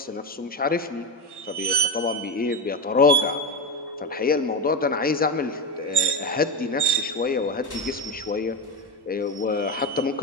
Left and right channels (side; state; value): both; normal; correlation 0.15